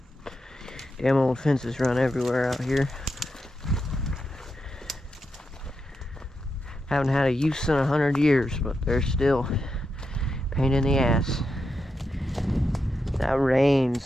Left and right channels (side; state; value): both; normal; correlation 0.86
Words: Damn old fences run everywhere out here. Haven't had a use in 100 years, but they're still a pain in the ass. That